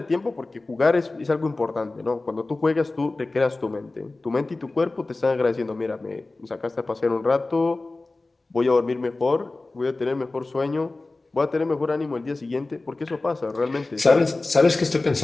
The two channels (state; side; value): quieter; right; 3.2 dB